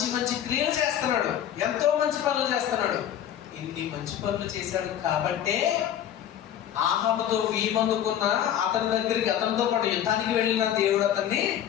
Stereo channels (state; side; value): quieter; right; 10.5 dB